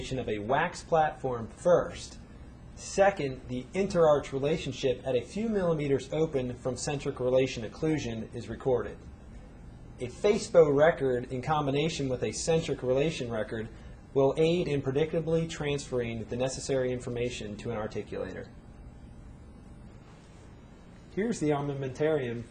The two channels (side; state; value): both; identical; correlation 1.00